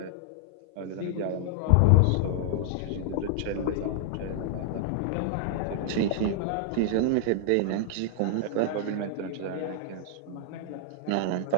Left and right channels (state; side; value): different; both; correlation -0.01